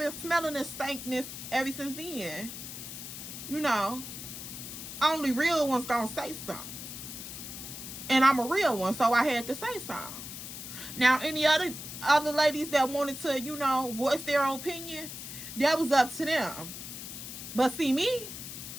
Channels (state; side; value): noise; left; hiss, 9 dB below the sound